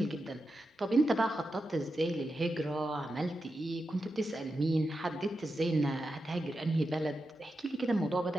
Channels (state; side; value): normal; both; correlation 0.89